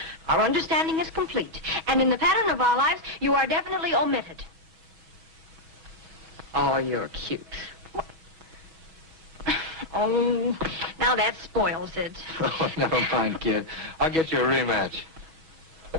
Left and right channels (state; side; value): late; left; 6.2 ms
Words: Our understanding is complete. And in the pattern of our lives, you are definitely omitted. Oh, you're cute. Oh, now that spoils it. Oh, never mind, kid. I'll get you a rematch.